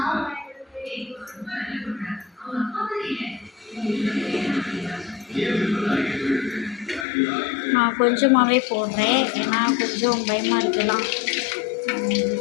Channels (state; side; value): drops out; right; at 7.1 s